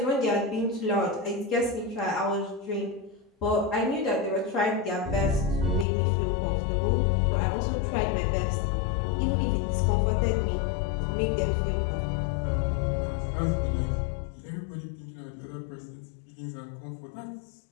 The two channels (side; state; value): right; drops out; at 5.9 s